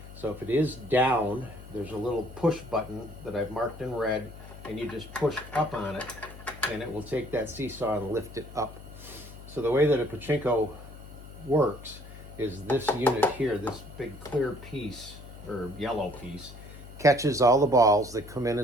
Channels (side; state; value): left; noise; hum, 15 dB below the sound